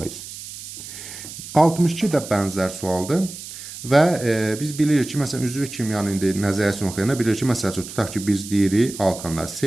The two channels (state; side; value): noise; right; hiss, 12 dB below the sound